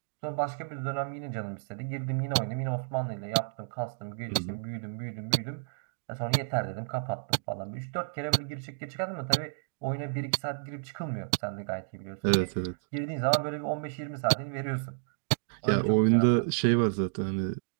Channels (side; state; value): left; silent; digital silence